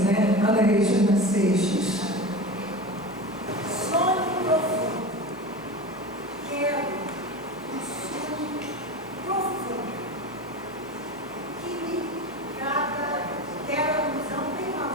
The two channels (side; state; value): both; normal; correlation 0.28